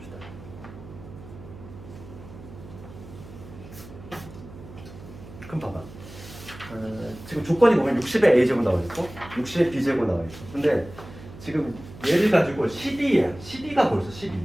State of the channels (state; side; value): noise; right; hum, 16 dB below the sound